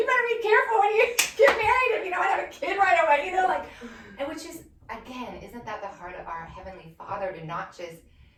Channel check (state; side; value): identical; both; correlation 1.00